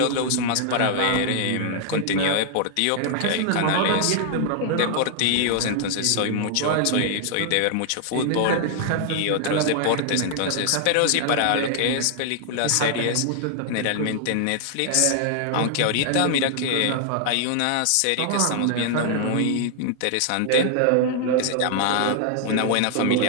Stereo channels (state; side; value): different; both; correlation 0.00